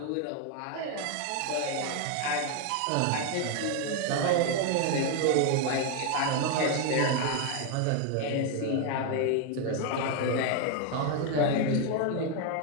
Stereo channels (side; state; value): both; different; correlation 0.01